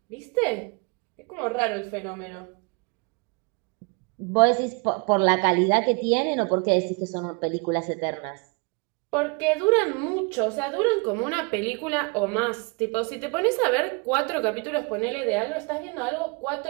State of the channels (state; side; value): quieter; left; 31.4 dB